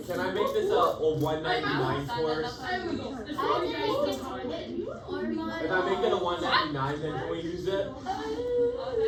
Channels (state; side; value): identical; both; correlation 1.00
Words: Can I make this a 199 course? I think it's If I make it a 199, then can we use it?